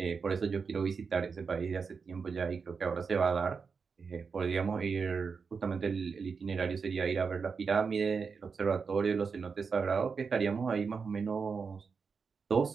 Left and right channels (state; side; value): quieter; left; 5.4 dB